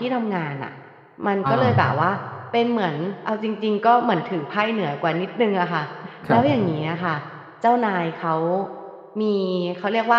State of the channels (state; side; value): identical; both; correlation 1.00